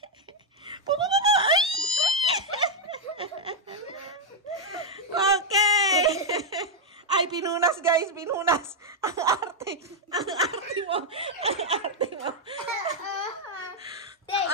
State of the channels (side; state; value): both; normal; correlation -0.01